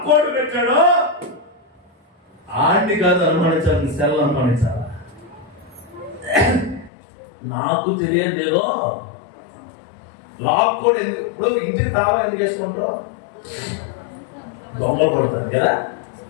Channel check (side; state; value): right; drops out; at 6.9 s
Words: పెట్టాడో ఆడిని కాదు అనుమానించాలి, సెల్ అనుమానించాలా. నాకు తెలియదు ఏదో లాక్కోడు ఎందుకు. ఇప్పుడు ఇంటికి తాళం ఎందుకు వేసుకుంటారు? దొంగలు పడతారు కదా,